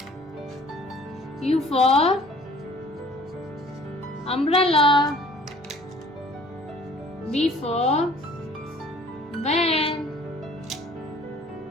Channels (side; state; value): both; normal; correlation 0.53